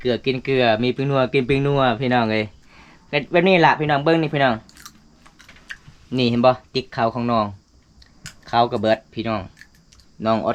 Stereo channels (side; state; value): both; identical; correlation 1.00